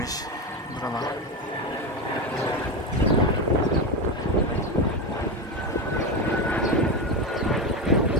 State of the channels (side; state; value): both; normal; correlation 0.16